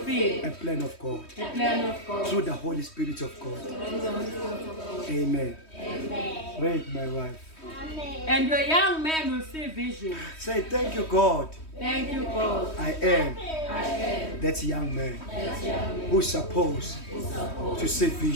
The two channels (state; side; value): late; right; 3.2 ms